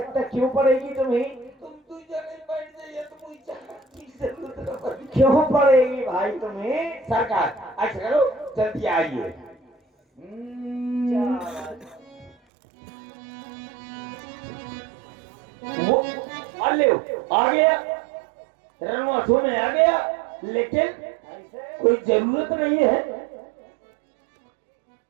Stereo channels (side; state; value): left; drops out; at 12.4 s